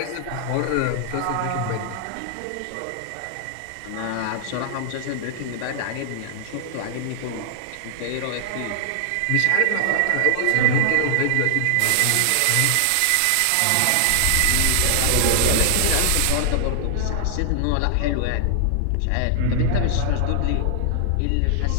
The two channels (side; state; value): both; different; correlation 0.00